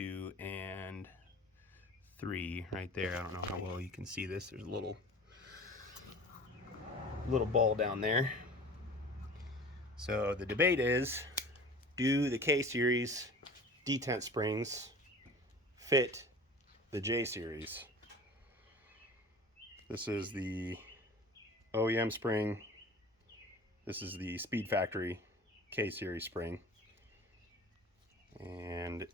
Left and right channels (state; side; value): normal; both; correlation 0.40